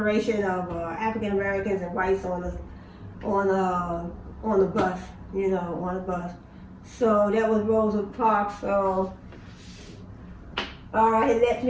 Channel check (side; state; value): both; identical; correlation 1.00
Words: of African Americans and whites on the bus, you know, on the bus. So that was Rosa Parks. So, all right, let